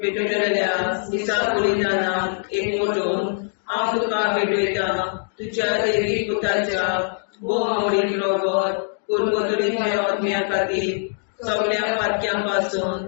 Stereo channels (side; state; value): right; silent; digital silence